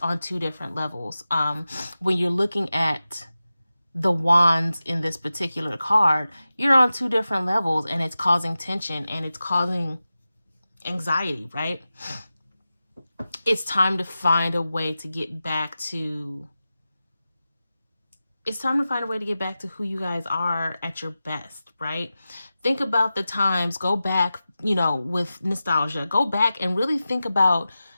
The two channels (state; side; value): inverted; both; correlation -0.94